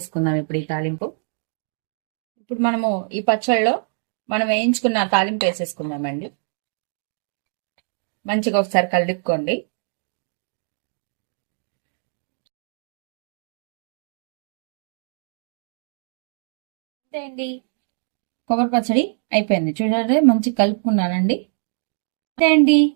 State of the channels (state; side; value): silent; left; digital silence